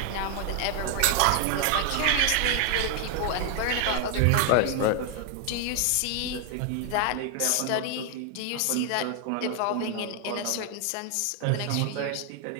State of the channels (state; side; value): different; both; correlation 0.00